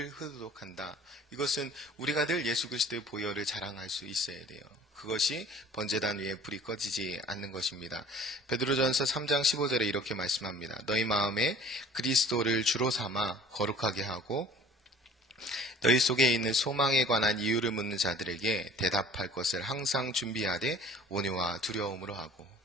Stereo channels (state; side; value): normal; both; correlation 0.49